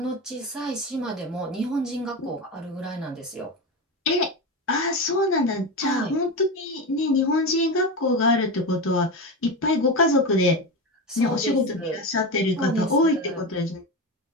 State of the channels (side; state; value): both; normal; correlation 0.19